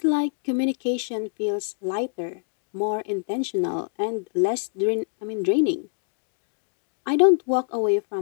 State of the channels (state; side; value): silent; right; digital silence